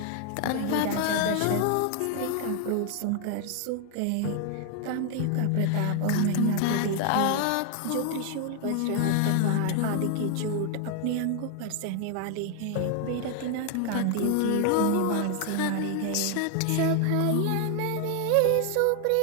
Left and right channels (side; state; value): both; different; correlation 0.00